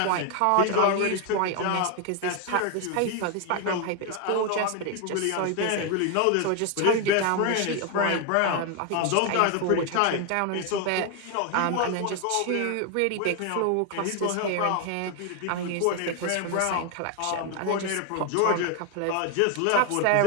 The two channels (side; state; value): both; different; correlation 0.01